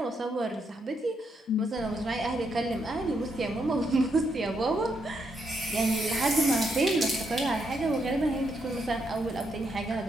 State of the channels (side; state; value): both; normal; correlation 0.78